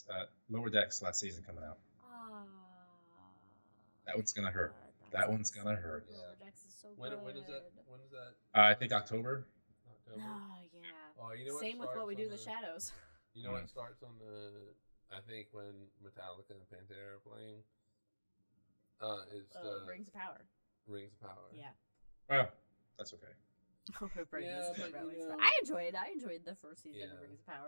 Lower Decks last season coming out. That one's gonna hurt. That one's gonna hurt. Lower Decks is so When good. is that? When is that? I think October. Oh yeah. Oh, you know what? Same with What We Do in the Shadows. You know what starts on the? I think when Metallica and Pantera are playing. It's the Rings of Power. Rings of Power. Yeah. Well, that's okay. I enjoyed the first season of Rings of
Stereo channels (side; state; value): both; inverted; correlation -1.00